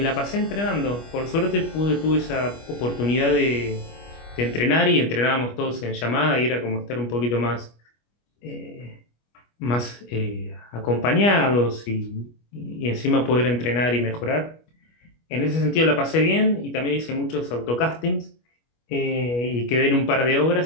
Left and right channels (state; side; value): late; right; 25 ms